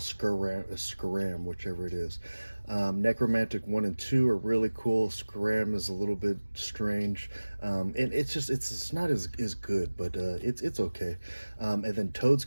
whichever it is. Necromantic 1 and 2 are really cool. Scram is a little bit strange, and it's not as good, but it's okay. And then Toad's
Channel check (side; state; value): both; inverted; correlation -1.00